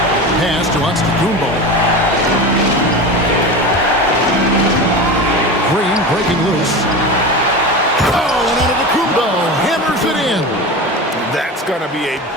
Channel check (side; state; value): both; normal; correlation 0.27